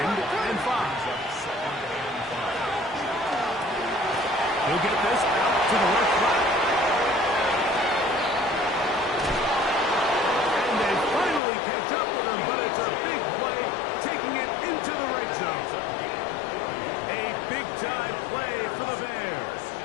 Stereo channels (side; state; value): right; drops out; at 11.4 s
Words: and 5. He'll get this out to the left flat. And they finally catch up with him, but it's a big play, taking it into the red zone. A big-time play for the Bears.